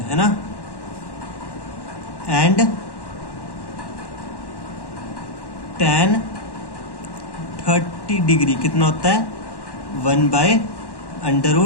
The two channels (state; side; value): late; right; 1.1 ms